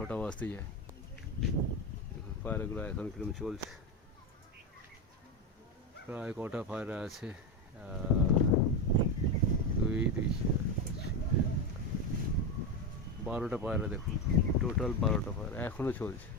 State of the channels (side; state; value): both; normal; correlation 0.13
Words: বাজতে যায়, দেখুন পায়রাগুলো এখন কিরকম চলছে। প্রায় কটা পায়রা আছে? 12টা পায়রা, দেখুন টোটাল 12টা পায়রা এখনও চলছে।